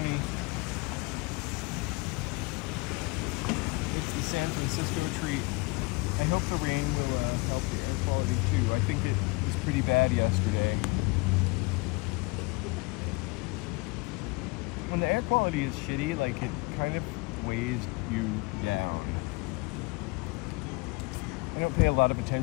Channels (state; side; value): quieter; right; 26.8 dB